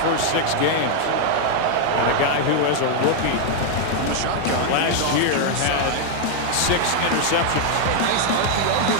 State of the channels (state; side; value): different; both; correlation 0.00